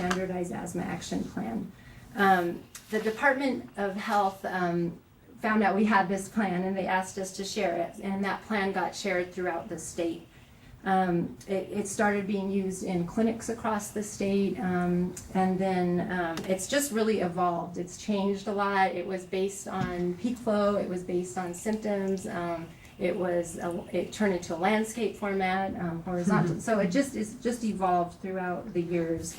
asthma action plan. The Department of Health found out we had this plan and they asked us to share it, and that plan got shared throughout the state. It started being used in clinics across the state, and then it's just really evolved. It's changed a lot. It was based on peak flow. It was based on symptoms. It turned into a landscape format, horizontal. So it's just evolved throughout the years.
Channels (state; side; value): identical; both; correlation 1.00